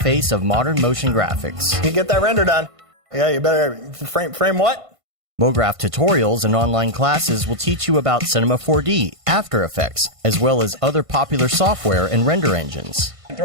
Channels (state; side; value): late; left; 1.5 ms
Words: of modern motion graphics. You get that render done. Yeah, you better frame what? Mograph tutorials and online classes will teach you about Cinema 4D, After Effects, as well as other popular software and render engines.